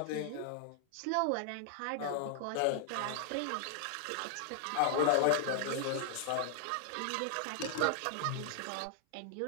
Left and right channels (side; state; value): both; different; correlation -0.01